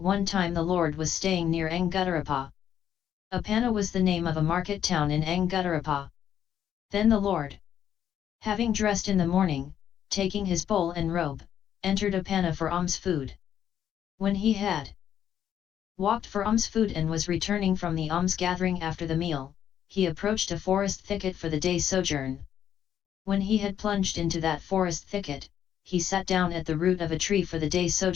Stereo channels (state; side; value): quieter; right; 9.7 dB